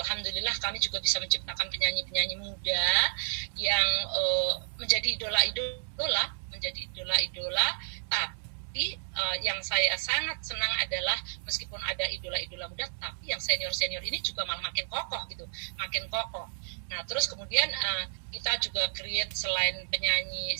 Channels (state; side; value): silent; left; digital silence